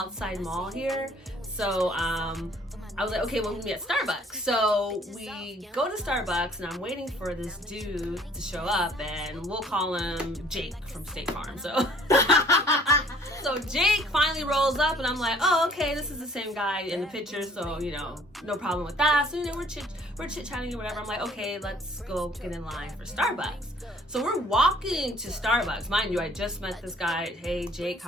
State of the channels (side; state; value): both; normal; correlation 0.58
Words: mall here, so I was like, okay, we'll meet at Starbucks. So we go to Starbucks, and I'm waiting for this dude to show up, and we'll call him Jake from State Farm. So Jake finally rolls up, and I'm like, oh, okay, this is the same guy in the picture, so, no problem with that. So, we're chit-chatting or whatever. I'm like, okay, let's go get in line for Starbucks. So we're walking to Starbucks. Mind you, I just met this guy. Hey, Jake,